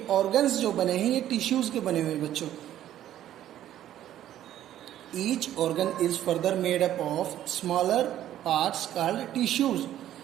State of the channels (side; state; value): left; quieter; 12.2 dB